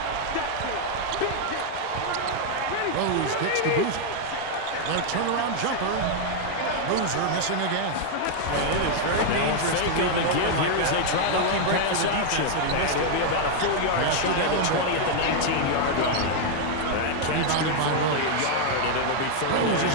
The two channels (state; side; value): different; both; correlation 0.00